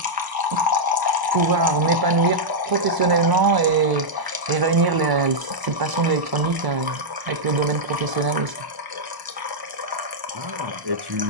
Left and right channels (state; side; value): late; left; 1.0 ms